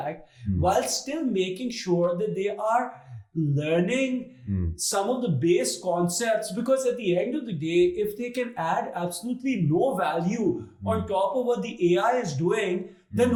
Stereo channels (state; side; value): identical; both; correlation 1.00